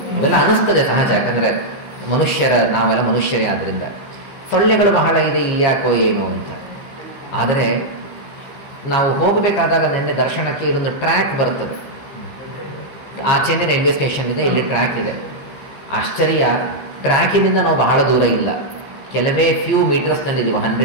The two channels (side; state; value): right; late; 15 ms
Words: ಇವೆಲ್ಲ ಅನಿಸ್ತದೆ ಸಹಜ. ಯಾಕಂದರೆ ನಾವೆಲ್ಲ ಮನುಷ್ಯರೇ, ಆದ್ದರಿಂದ ಸೊಳ್ಳೆಗಳು ಬಹಳ ಇದೆ ಇಲ್ಲಿ ಯಾಕೋ ಏನೋ ಅಂತ. ಆದರೆ ನಾವು ಹೋಗಬೇಕಾದಾಗ ನಿನ್ನೆ ದರ್ಶನಕ್ಕೆ ಇಲ್ಲೊಂದು ಟ್ರ್ಯಾಕ್ ಬರ್ತದೆ, ಆಚೆನೇ ರೈಲ್ವೆ ಸ್ಟೇಷನ್ ಇದೆ, ಇಲ್ಲಿ ಟ್ರ್ಯಾಕ್ ಇದೆ. ಆಶ್ಚರ್ಯ, ಟ್ರ್ಯಾಕಿನಿಂದ ನಾವು ಬಹಳ ದೂರ ಇಲ್ಲ, ಕೆಲವೇ ಫ್ಯೂ ಮೀಟರ್ಸ್ನಲ್ಲಿದ್ದೀವಿ.